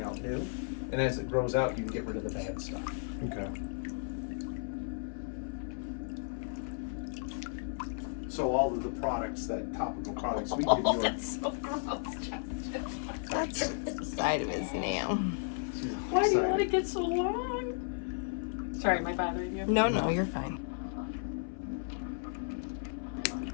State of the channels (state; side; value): silent; right; 55 dB below the other